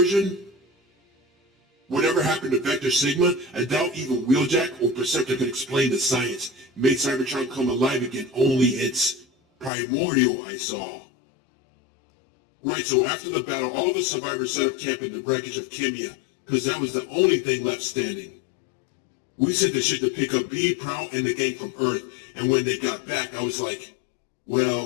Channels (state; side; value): drops out; right; at 9.7 s